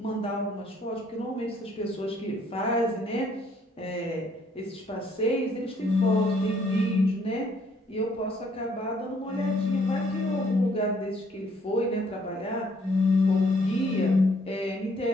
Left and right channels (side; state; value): both; normal; correlation 0.65